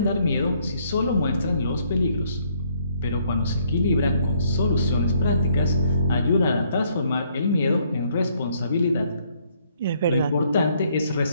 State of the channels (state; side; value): inverted; both; correlation -0.68